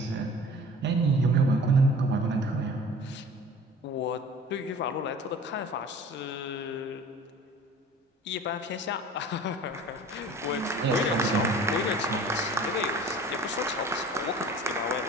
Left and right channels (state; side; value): normal; both; correlation 0.43